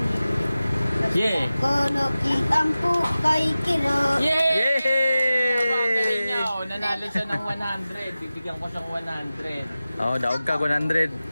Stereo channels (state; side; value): inverted; both; correlation -0.96